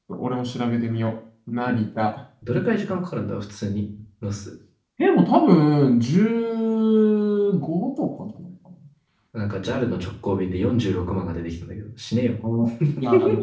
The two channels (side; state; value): both; identical; correlation 1.00